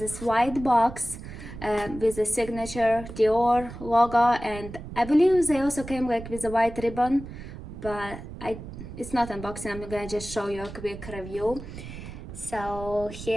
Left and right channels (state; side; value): noise; right; rumble, 12 dB below the sound